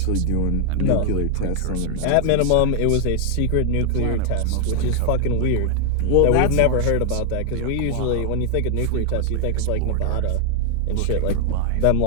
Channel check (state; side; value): different; both; correlation 0.00